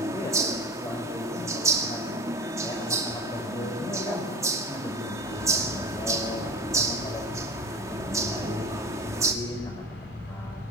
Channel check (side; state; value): both; normal; correlation 0.32